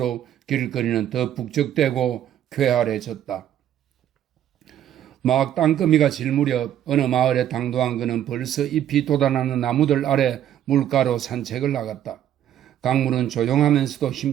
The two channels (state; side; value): quieter; left; 11.0 dB